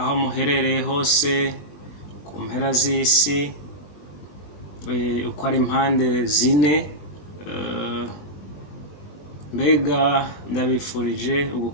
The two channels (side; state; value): right; late; 21 ms